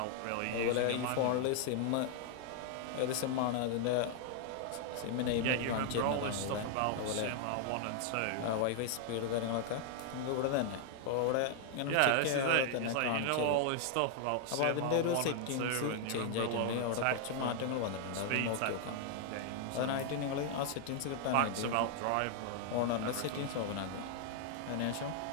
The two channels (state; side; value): different; both; correlation 0.00